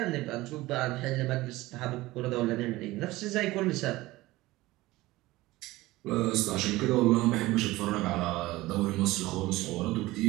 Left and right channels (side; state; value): left; quieter; 18.7 dB